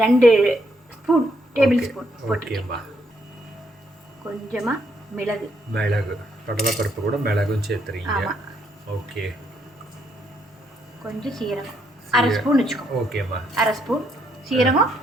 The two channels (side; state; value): both; normal; correlation 0.74